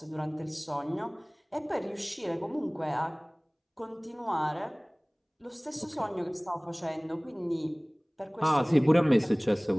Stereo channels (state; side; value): identical; both; correlation 1.00